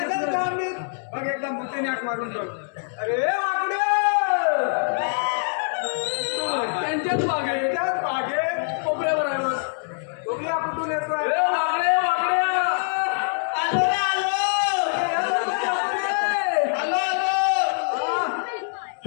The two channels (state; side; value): silent; right; digital silence